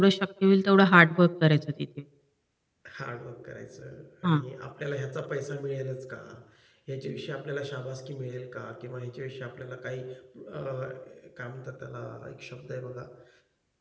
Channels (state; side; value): identical; both; correlation 1.00